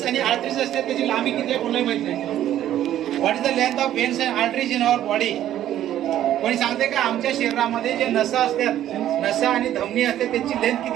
आणि आर्टरीज असते त्याची लांबी किती आहे कोणाला माहित नाही. What is the length of veins and arteries in our body? कोणी सांगते का आमच्या शरीरामध्ये जे नसा असतात, नसा आणि धमनी असते त्याची लेंथ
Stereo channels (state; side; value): quieter; left; 12.0 dB